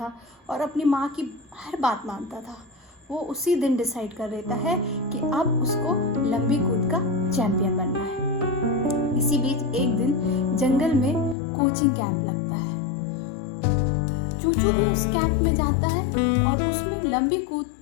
और अपनी माँ की हर बात मानता था, वो उसी दिन डिसाइड कर लेता है कि अब उसको लंबी कूद का चैंपियन बनना है। इसी बीच एक दिन जंगल में कोचिंग कैंप लगता है। चूचू भी उस कैंप में जाता है और उसमें लंबी कूद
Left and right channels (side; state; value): right; drops out; at 11.4 s